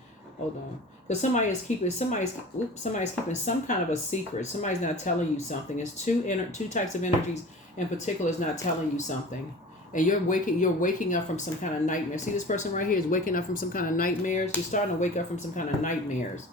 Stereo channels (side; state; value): both; normal; correlation 0.39